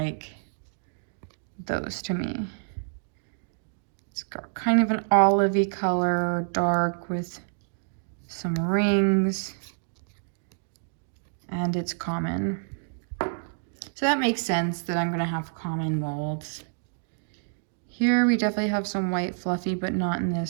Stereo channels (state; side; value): silent; left; digital silence